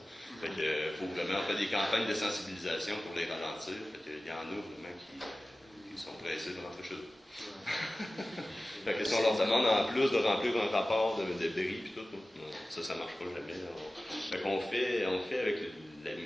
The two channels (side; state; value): both; normal; correlation 0.96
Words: Fait que, faut vraiment faire des campagnes de sensibilisation pour les ralentir. Fait que, il y en a vraiment qui sont pressés de rentrer chez eux. Fait que si on leur demande en plus de remplir un rapport de bris et tout, non, ça ne marche pas jamais. Fait qu'on fait avec